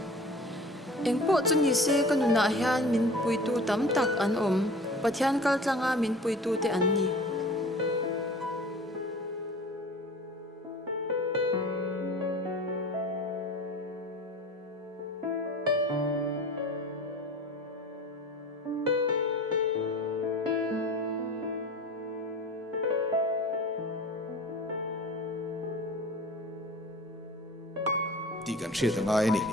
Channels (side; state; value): both; normal; correlation 0.41